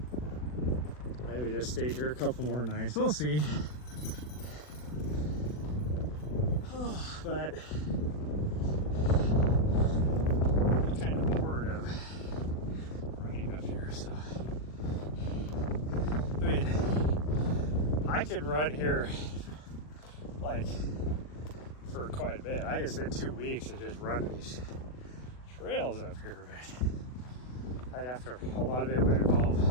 maybe just stay here a couple more nights. We'll see. Oh, but I'm kind of bored of running up here. So I mean, I could run here like for quite a bit. I could spend 2 weeks and just run these trails up here, but I'd have to, a lot of it would involve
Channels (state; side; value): late; right; 40 ms